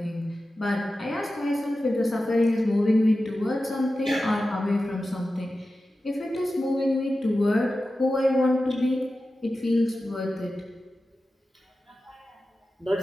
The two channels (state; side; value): normal; both; correlation 0.93